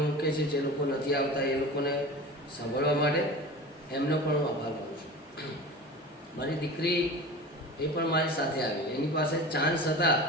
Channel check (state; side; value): normal; both; correlation 0.34